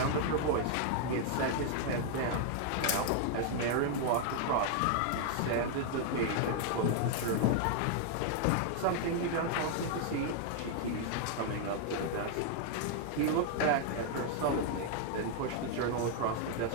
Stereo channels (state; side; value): different; both; correlation 0.00